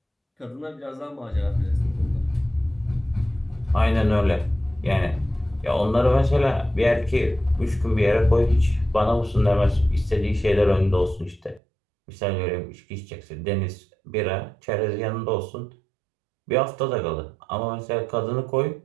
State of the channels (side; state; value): left; drops out; at 11.6 s